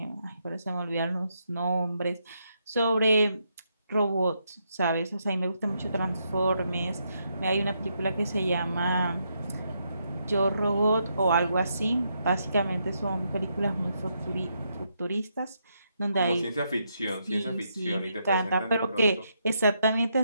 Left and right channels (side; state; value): both; inverted; correlation -0.79